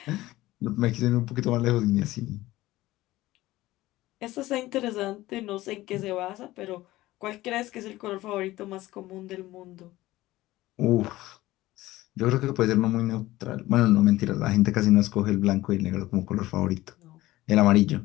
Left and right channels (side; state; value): right; quieter; 17.2 dB